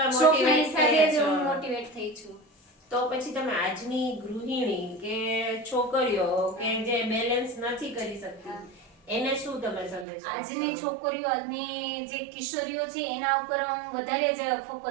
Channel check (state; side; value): drops out; left; at 10.1 s